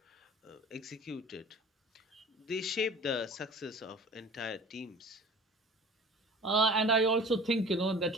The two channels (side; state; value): both; normal; correlation 0.43